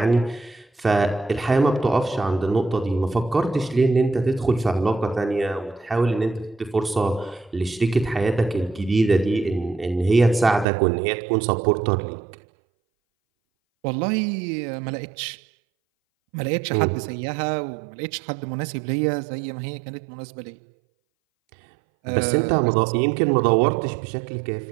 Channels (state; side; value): drops out; left; at 10.7 s